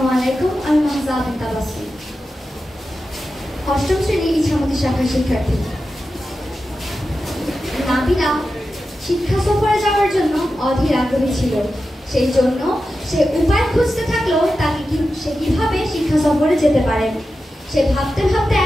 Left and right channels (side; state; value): both; normal; correlation 0.92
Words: আলাইকুম, আমি মাহজা বিন তাবাসসুম। অষ্টম শ্রেণীর ইছামতি শাখার শিক্ষার্থী। নাবিলা শিক্ষা সফরে যাওয়ার জন্য অধীর আগ্রহী ছিল। সেই জন্য সে উপায় খুঁজতে থাকলো সে কিভাবে শিক্ষা সফরে যেতে পারে। সে ভাবতে ভাবতে